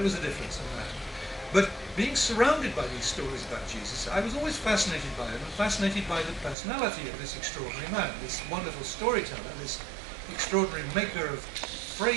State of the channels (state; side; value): drops out; left; at 6.6 s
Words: was a difference in that. But being surrounded by these stories about Jesus, I was always fascinated by them, and fascinated by the personality of this extraordinary man, this wonderful storyteller, this extraordinary maker of